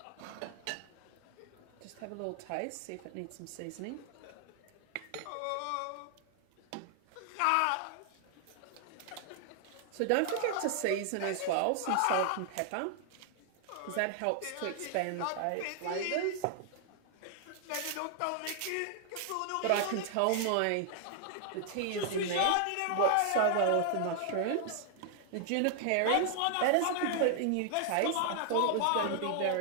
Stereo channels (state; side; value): different; both; correlation 0.00